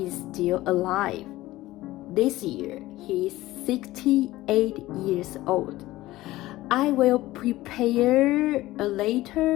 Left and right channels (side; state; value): right; quieter; 17.2 dB